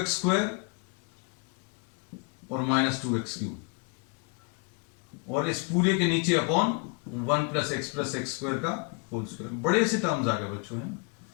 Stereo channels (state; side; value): quieter; right; 32.8 dB